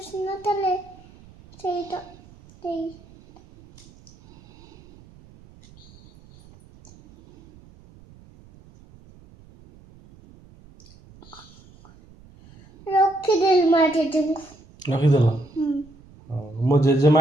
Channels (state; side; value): noise; right; rumble, 24 dB below the sound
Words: ନଥିଲେ ସେଇଟା ସେଇ ରଖିଦେଲି ମା ଜେଜେଙ୍କୁ। ରଖିଦେଲ? ମୋ ଜେଜେମା